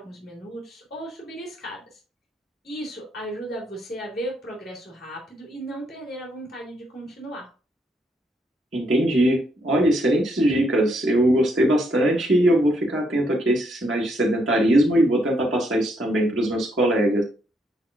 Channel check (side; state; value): both; normal; correlation 0.75